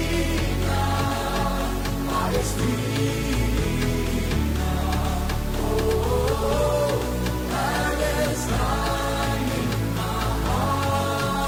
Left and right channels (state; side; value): identical; both; correlation 1.00